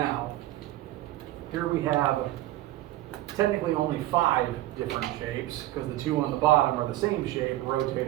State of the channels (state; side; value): quieter; left; 15.8 dB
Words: Here we have technically only 5 different shapes, because the 2 on the bottom are the same shape,